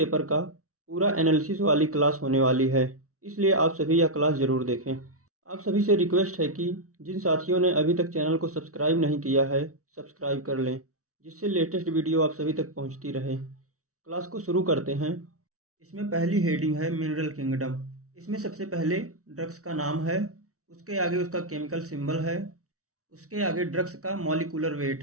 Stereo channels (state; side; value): late; left; 0.65 ms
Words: का पूरा एनालिसिस वाली क्लास होने वाली है, इसलिए आप सभी यह क्लास ज़रूर देखें। आप सभी से रिक्वेस्ट है कि जिन साथियों ने अभी तक चैनल को सब्सक्राइब नहीं किया है, सब्सक्राइब कर लें, जिससे लेटेस्ट वीडियो आप सभी तक पहुंचती रहे। क्लास को शुरू करते हैं। इसमें पहली हेडिंग है मिनरल किंगडम। इसमें सबसे पहले ड्रग्स का नाम है, उसके आगे उसका केमिकल सिंबल है, उसके आगे ड्रग्स का मॉलिक्यूलर वेट